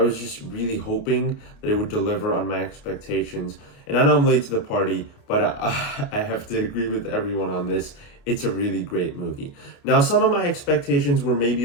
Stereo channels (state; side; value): late; right; 29 ms